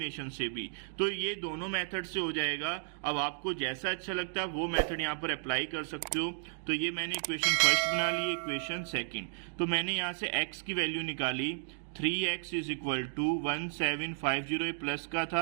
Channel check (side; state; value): left; silent; digital silence